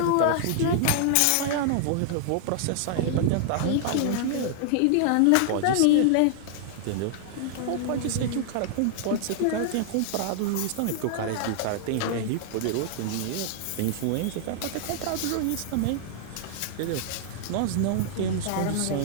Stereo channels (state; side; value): different; both; correlation -0.01